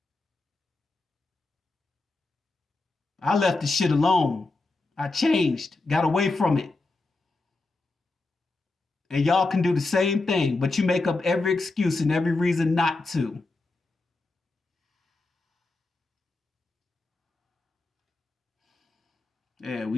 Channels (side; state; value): right; quieter; 3.3 dB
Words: I left the shit alone. I changed, got away from it. And y'all can do the same thing, but you make up every excuse and every reason not to. Yeah, we